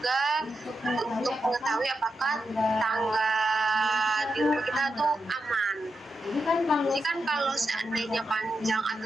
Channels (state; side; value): normal; both; correlation 0.86